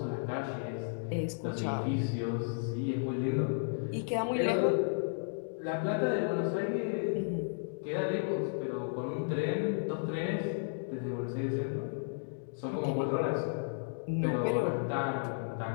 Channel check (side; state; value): right; silent; digital silence